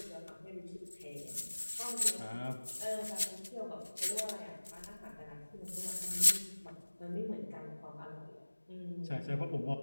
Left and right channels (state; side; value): inverted; both; correlation -1.00